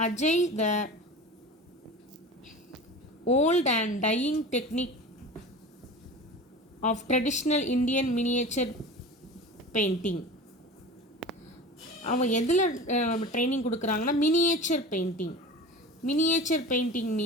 Ajay the old and dying technique of traditional Indian miniature painting. அவன் எதில் ட்ரைனிங் கொடுக்குறாங்கன்னா miniature painting. Miniature painting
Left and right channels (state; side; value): normal; both; correlation 0.34